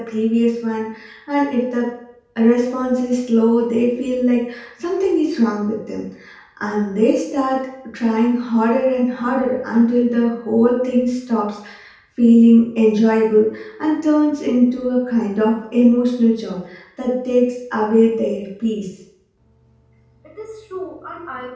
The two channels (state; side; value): identical; both; correlation 1.00